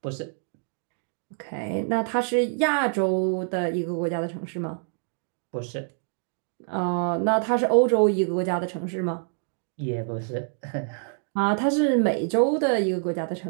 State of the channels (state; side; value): silent; left; 57 dB below the other